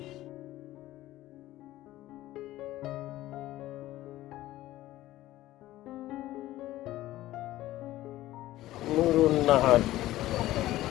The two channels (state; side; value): quieter; right; 15.6 dB